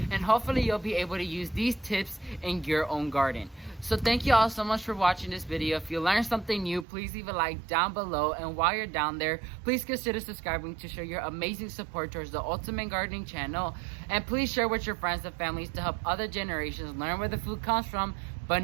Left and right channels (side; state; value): left; drops out; at 6.9 s